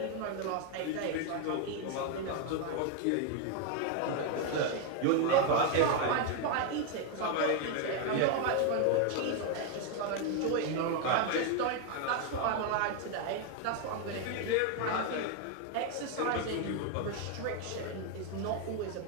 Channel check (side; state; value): both; different; correlation 0.01